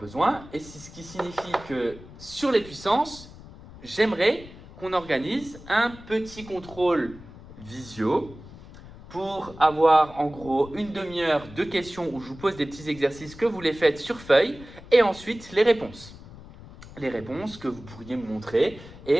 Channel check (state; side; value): noise; left; rumble, 18 dB below the sound